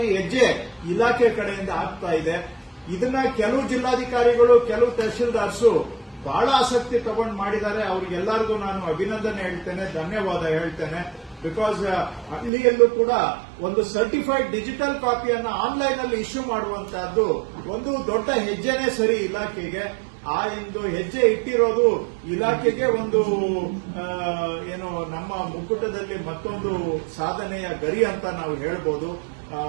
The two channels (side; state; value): left; drops out; at 12.5 s